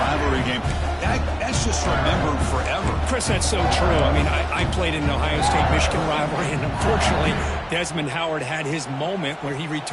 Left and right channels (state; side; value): identical; both; correlation 1.00